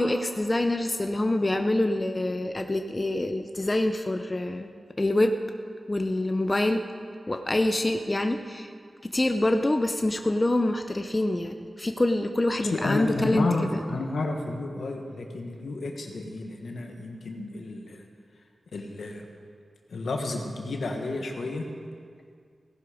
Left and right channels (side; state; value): both; normal; correlation 0.97